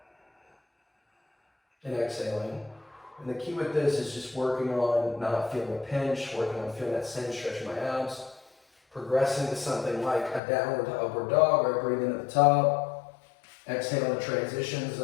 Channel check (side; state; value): right; drops out; at 10.4 s